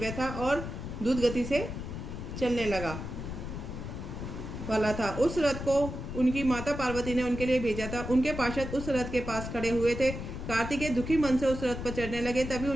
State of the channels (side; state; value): left; noise; rumble, 7 dB below the sound